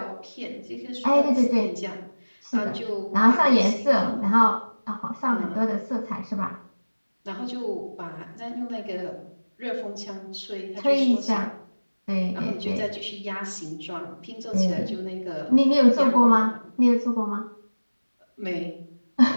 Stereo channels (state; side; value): inverted; both; correlation -1.00